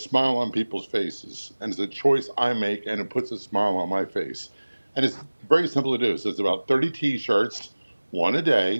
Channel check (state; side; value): inverted; both; correlation -1.00